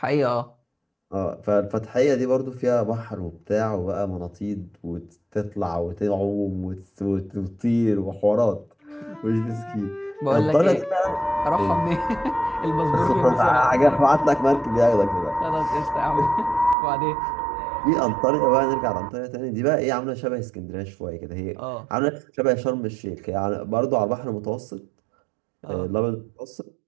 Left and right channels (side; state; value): left; drops out; at 16.8 s